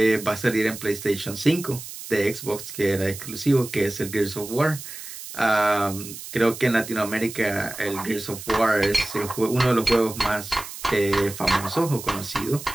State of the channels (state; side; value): noise; right; hiss, 12 dB below the sound